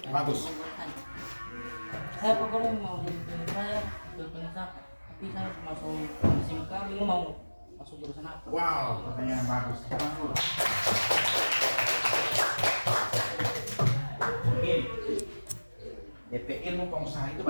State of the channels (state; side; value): inverted; both; correlation -1.00